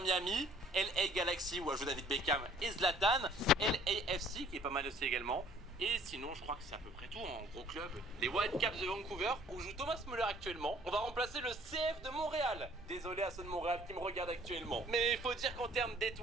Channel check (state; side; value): normal; both; correlation 0.56